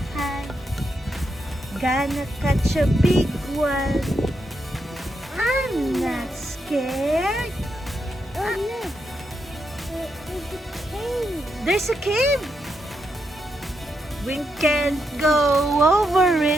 hunt. Gonna catch a big one. I'm not scared. Oh no, there's a cave. There's a cave. We can't go over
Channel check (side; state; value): both; normal; correlation 0.82